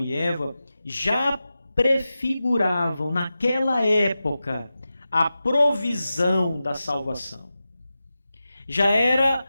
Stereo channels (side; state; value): both; inverted; correlation -0.93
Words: Eva já prefiguravam, naquela época, a provisão da salvação. Já